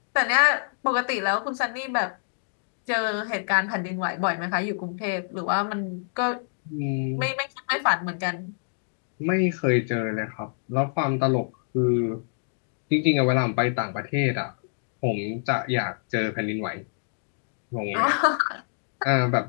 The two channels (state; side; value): silent; right; digital silence